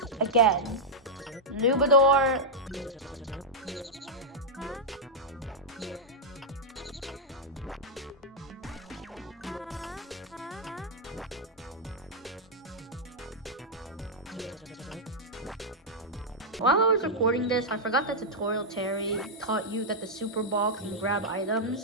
again, Nubador, While I was recording this, I forgot that Tutorial Terry taught you that the Super Ball can grab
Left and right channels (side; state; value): both; normal; correlation -0.06